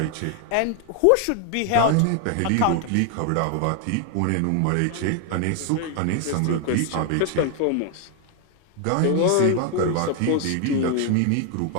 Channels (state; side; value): different; both; correlation 0.00